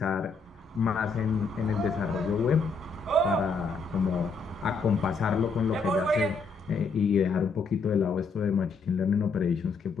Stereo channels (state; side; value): quieter; right; 4.4 dB